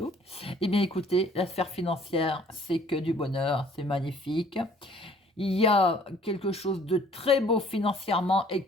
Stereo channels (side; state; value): both; normal; correlation 0.56